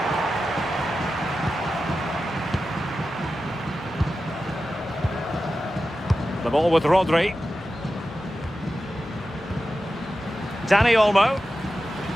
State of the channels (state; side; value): normal; both; correlation 0.92